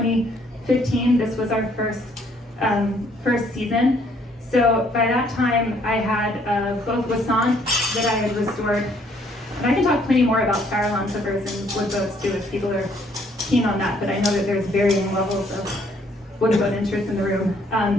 This was our first season. So by that time, I had both Wassant that I had restored, and I can talk plenty more about Farallon clippers and wood boats too if people are keen on that, but I know that there's varying levels of wood boat interest in the room.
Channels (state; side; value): normal; both; correlation 0.65